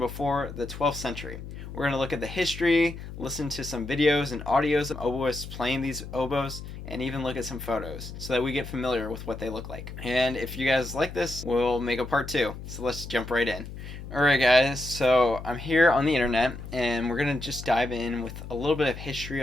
the 12th century. We're going to look at the history, listen to some videos and audios of oboists playing these oboes, and even look at some photos so that we get familiar with what they look like. And if you guys like this, we'll make a part 2. So let's jump right in. Alright guys, so I'm here on the internet and we're going to just dive in with a little bit of history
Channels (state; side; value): noise; left; hum, 11 dB below the sound